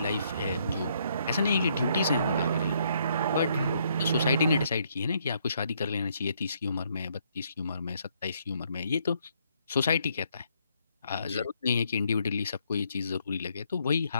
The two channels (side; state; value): both; inverted; correlation -0.71